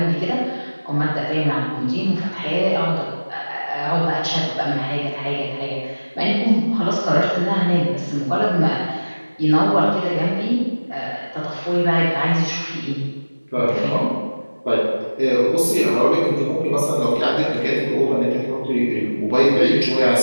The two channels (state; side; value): inverted; both; correlation -1.00